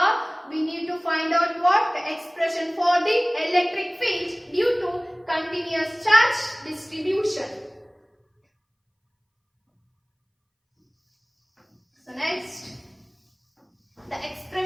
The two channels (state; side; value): identical; both; correlation 1.00